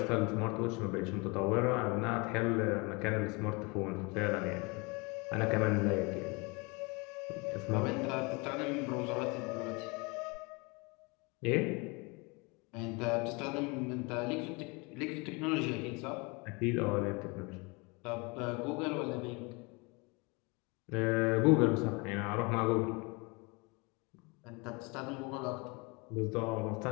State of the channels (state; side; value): quieter; right; 28.4 dB